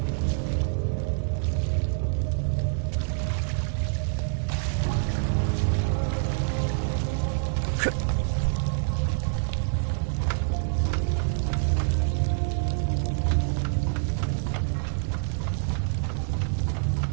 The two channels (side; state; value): left; silent; 57 dB below the other